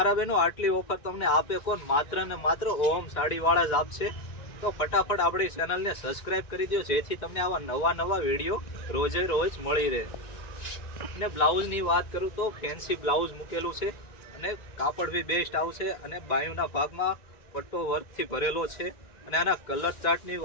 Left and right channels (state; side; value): late; right; 1.9 ms